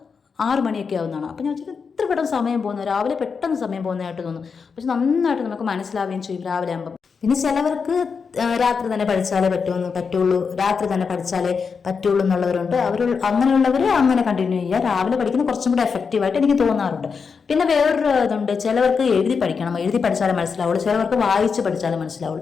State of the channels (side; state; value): right; quieter; 5.6 dB